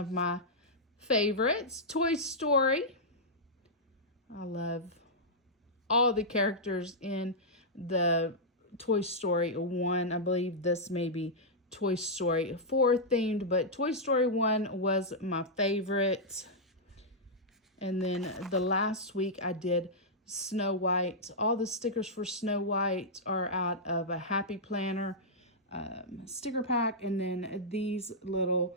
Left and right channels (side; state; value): both; normal; correlation -0.09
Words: my favorites, Toy Story. I love all the characters in the Toy Story 1. I believe this may be Toy Story 4 themed, but Toy Story 1 was my favorite. And then the last week I did Snow White. All the stickers for Snow White are out of a Happy Planner sticker pack. And then these little